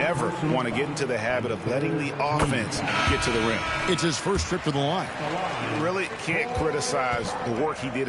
want to get into the habit of letting the offense get to the rim. It's his first trip to the line. You really can't criticize the work he did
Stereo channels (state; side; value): identical; both; correlation 1.00